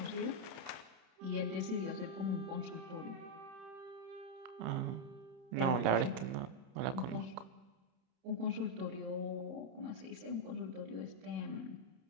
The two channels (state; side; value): late; left; 30 ms